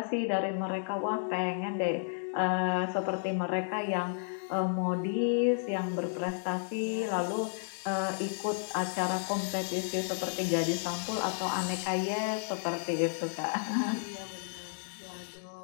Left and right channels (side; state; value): right; silent; digital silence